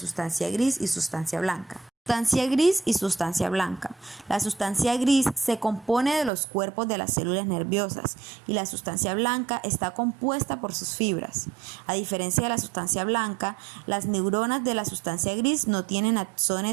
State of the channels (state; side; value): drops out; left; at 6.3 s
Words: gris y sustancia blanca. Sustancia gris y sustancia blanca. La sustancia gris se compone de los cuerpos de las células nerviosas y la sustancia blanca está compuesta por sus fibras. A diferencia de la sustancia blanca, las neuronas de la sustancia gris no tienen